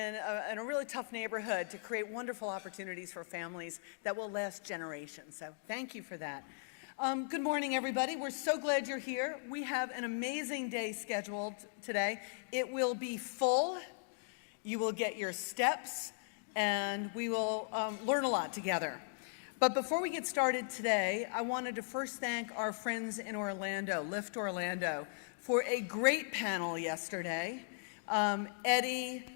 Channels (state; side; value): silent; right; digital silence